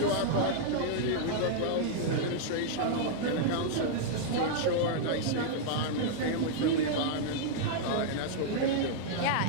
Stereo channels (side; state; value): both; different; correlation -0.01